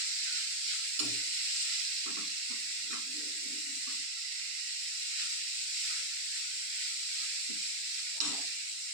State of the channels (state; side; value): late; left; 7.1 ms